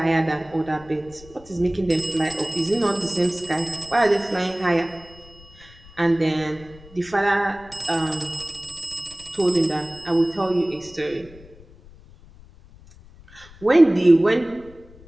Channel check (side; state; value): left; noise; rumble, 22 dB below the sound